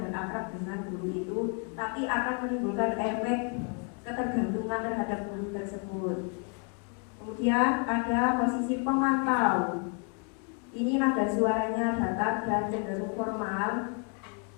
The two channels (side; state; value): right; quieter; 38.1 dB